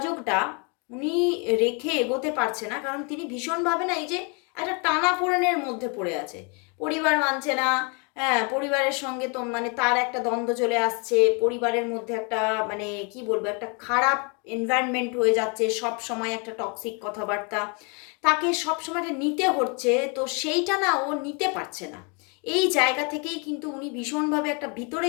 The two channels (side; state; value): right; quieter; 34.1 dB